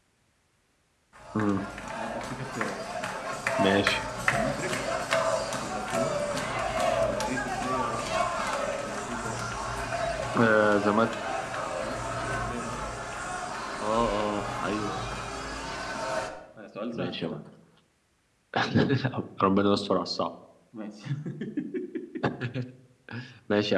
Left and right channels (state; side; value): identical; both; correlation 1.00